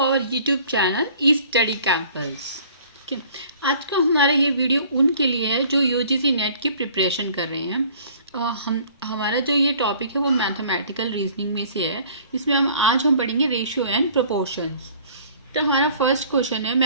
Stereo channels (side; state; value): both; inverted; correlation -0.52